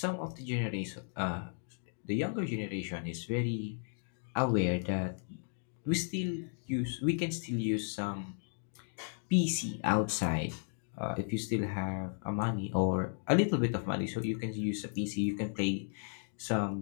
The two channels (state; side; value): silent; right; digital silence